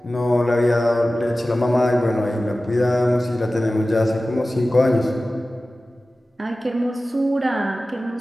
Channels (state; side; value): normal; both; correlation 0.96